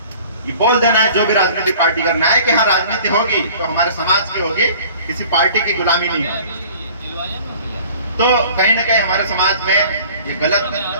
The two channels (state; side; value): inverted; both; correlation -0.48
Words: ये बोल देना है जो भी राजनीतिक पार्टी का न्याय कि हाँ राजनीति होगी तो हमारे समाज की होगी, किसी पार्टी की गुलामी नहीं होगी। तो कहीं ना कहीं हमारे समाज में ये गलत